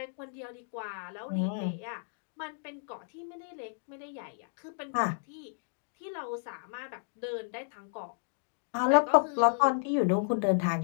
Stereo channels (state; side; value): silent; right; digital silence